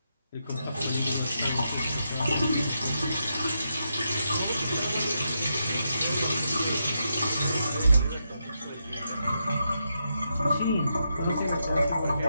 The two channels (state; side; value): inverted; both; correlation -0.83